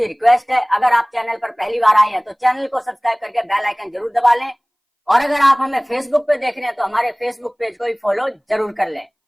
रिक्वेस्ट है, अगर आप चैनल पर पहली बार आए हैं तो चैनल को सब्सक्राइब करके बेल आइकन जरूर दबा लें, और अगर आप हमें फेसबुक पे देख रहे हैं तो हमारे फेसबुक पेज को भी फॉलो जरूर कर लें।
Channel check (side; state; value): both; identical; correlation 1.00